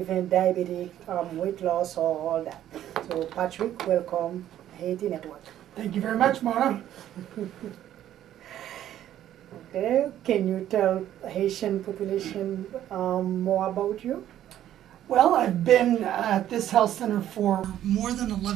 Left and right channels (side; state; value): left; quieter; 11.8 dB